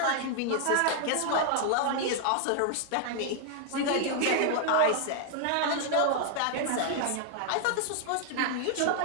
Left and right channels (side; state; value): both; different; correlation 0.00